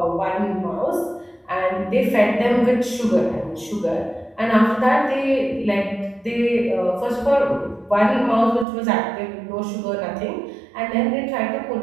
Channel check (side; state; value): left; drops out; at 8.7 s